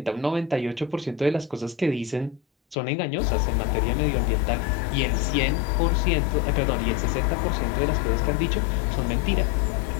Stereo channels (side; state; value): right; drops out; at 2.8 s